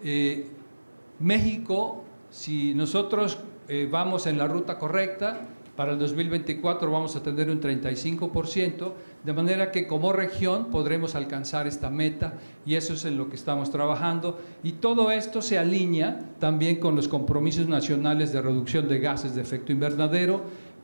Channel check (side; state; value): both; inverted; correlation -1.00